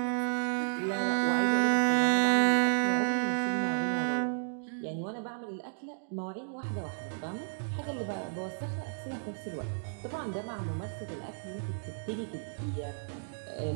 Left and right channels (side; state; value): left; silent; digital silence